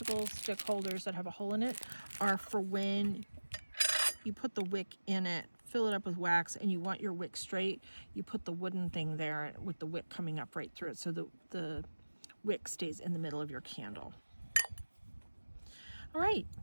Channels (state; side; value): inverted; both; correlation -1.00